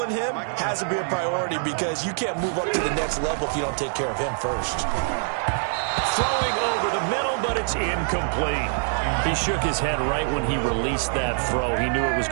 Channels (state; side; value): silent; left; digital silence